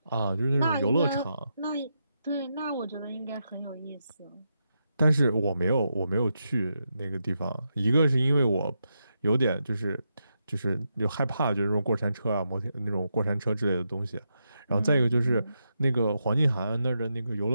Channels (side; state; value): both; inverted; correlation -0.84